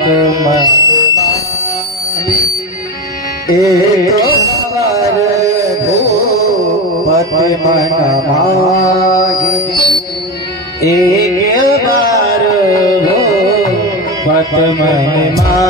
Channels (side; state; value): both; normal; correlation 0.20